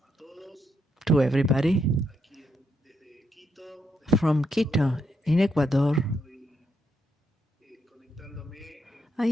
to everybody Desde Quito. from Quito in Ecuador. I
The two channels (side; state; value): both; normal; correlation 0.80